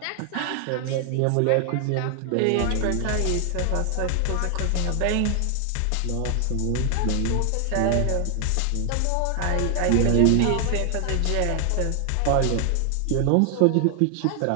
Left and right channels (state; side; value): different; both; correlation 0.00